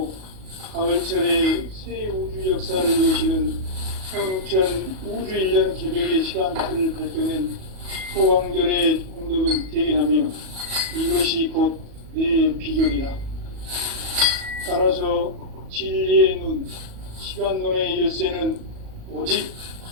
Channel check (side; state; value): left; late; 37 ms